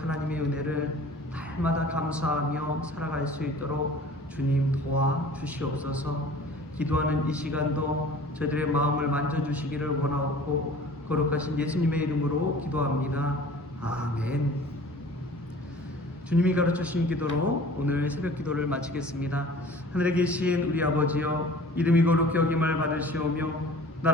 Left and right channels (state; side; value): normal; both; correlation 0.46